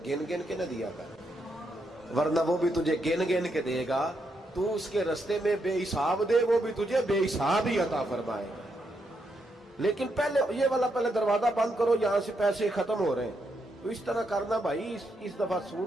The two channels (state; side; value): normal; both; correlation 0.80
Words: گن گن کے نہ دیا کر، ورنہ وہ بھی تجھے گن گن کے دے گا. تو اس کے رستے میں بے حساب دے، وہ بھی تجھے بے حساب ہی عطا فرمائے گا. لیکن پہلے یہ والا پہلے دروازہ بند کرو، یہاں سے پیسے ختم ہو رہے ہیں. تو اس طرح کرنا بھائی. اس دفعہ